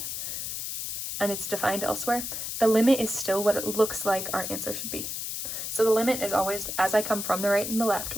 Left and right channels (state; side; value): noise; left; hiss, 4 dB below the sound